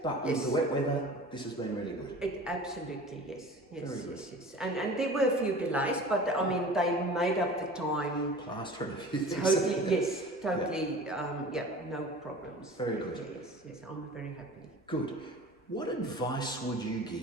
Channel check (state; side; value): normal; both; correlation 0.40